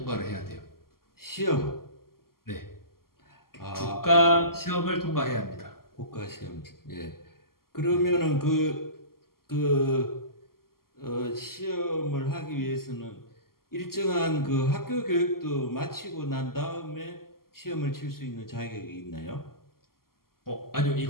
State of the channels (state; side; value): late; right; 0.92 ms